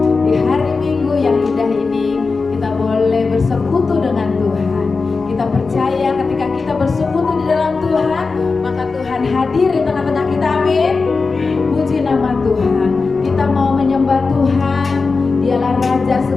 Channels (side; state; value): right; quieter; 4.3 dB